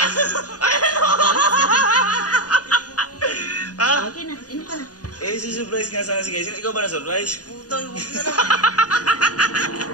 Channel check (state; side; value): late; right; 0.68 ms